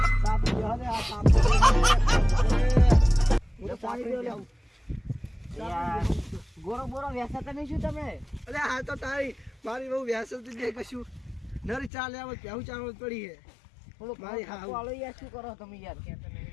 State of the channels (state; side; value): drops out; right; at 11.9 s